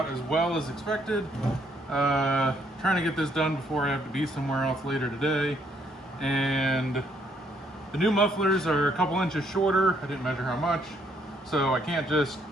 as well as expected. Trying to get this done before I have to be somewhere else later today. And the new mufflers are a couple inches shorter. I didn't measure how much, so I can't just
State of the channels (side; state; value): both; normal; correlation 0.70